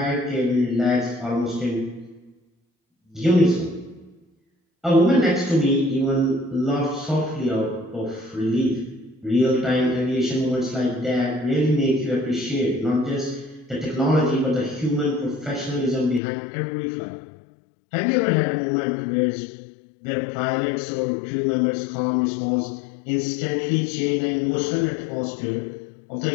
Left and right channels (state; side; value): drops out; right; at 16.2 s